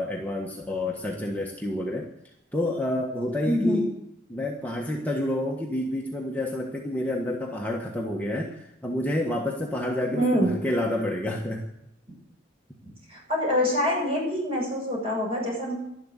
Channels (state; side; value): normal; both; correlation 0.57